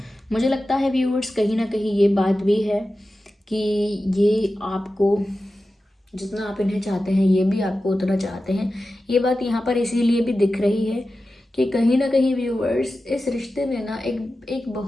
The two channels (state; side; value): normal; both; correlation 0.93